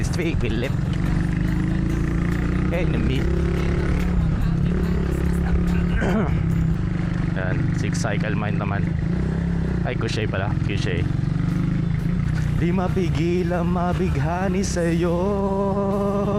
Philip. Enemy. Yan, six cycle mind naman. Ay, Kushay pala, Kushay. Di mapigil ang mabighani sa'yo,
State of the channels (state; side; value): identical; both; correlation 1.00